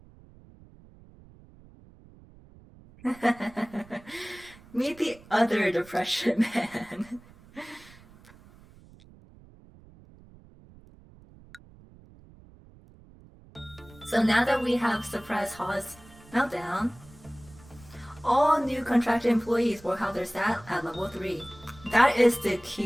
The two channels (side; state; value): right; noise; rumble, 23 dB below the sound